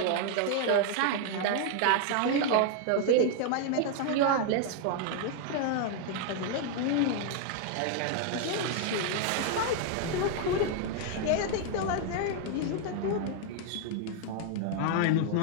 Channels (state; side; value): different; both; correlation 0.00